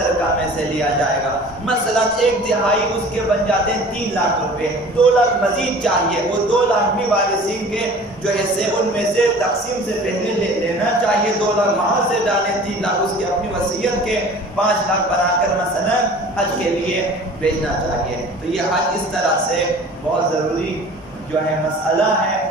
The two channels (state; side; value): normal; both; correlation 0.44